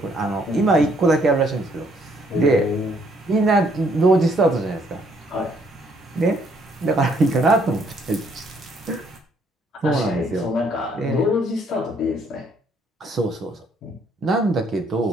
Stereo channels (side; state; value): both; normal; correlation 0.67